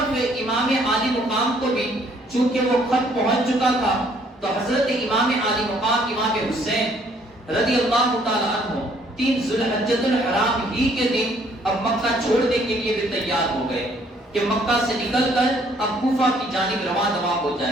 امام عالی مقام کو بھی چونکہ وہ خط پہنچ چکا تھا تو حضرت امام عالی مقام امام حسین رضی اللہ تعالیٰ عنہ 3 ذوالحجۃ الحرام ہی کے دن اب مکہ چھوڑنے کے لیے بھی تیار ہو گئے کہ مکہ سے نکل کر اب کوفہ کی جانب رواں ہو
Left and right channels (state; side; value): normal; both; correlation 0.63